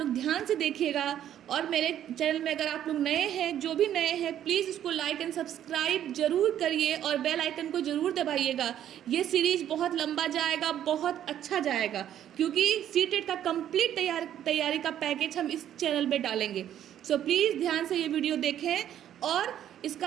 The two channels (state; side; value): quieter; left; 10.8 dB